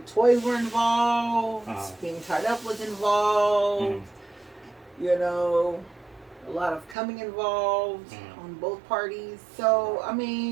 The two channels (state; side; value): drops out; left; at 7.0 s